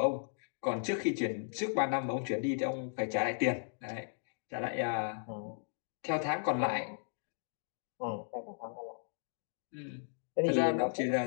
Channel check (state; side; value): silent; right; digital silence